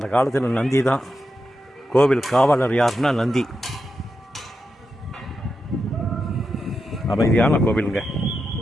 காலத்தில் நந்தி தான் கோவில் காவலர். யாருன்னா நந்தி. அமைதியான கோவிலுங்க.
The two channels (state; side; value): normal; both; correlation 0.87